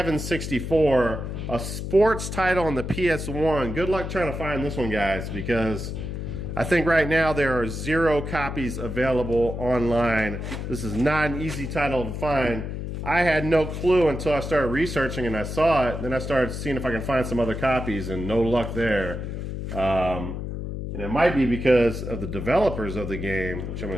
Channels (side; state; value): left; noise; hum, 5 dB below the sound